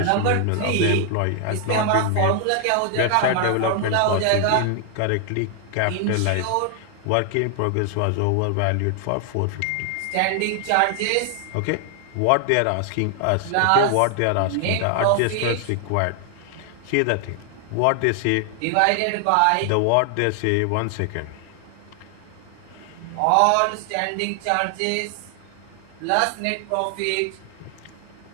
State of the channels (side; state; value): both; different; correlation 0.00